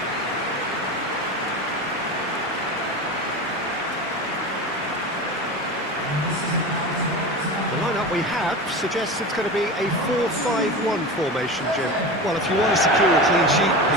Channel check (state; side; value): normal; both; correlation 0.27